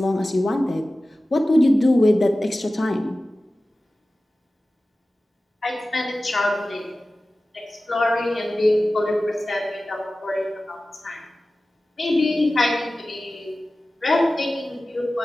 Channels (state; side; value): normal; both; correlation 0.96